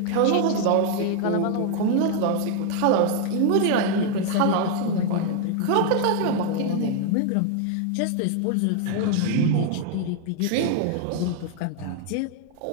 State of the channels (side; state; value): both; different; correlation 0.00